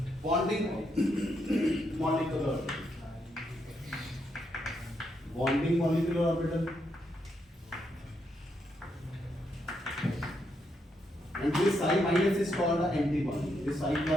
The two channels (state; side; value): normal; both; correlation 0.79